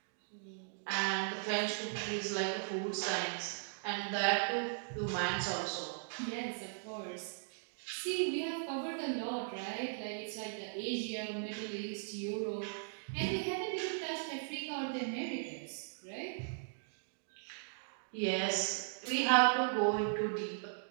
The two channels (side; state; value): left; silent; digital silence